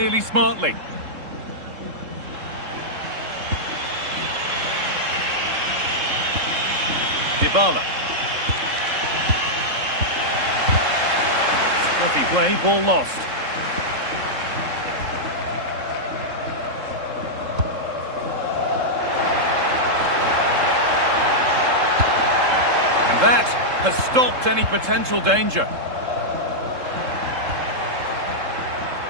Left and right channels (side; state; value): left; late; 3.7 ms